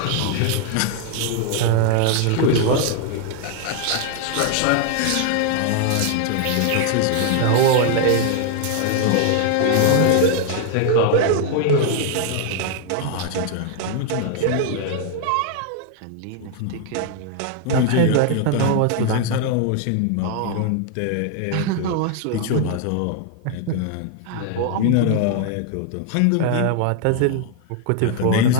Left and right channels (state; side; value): different; both; correlation 0.00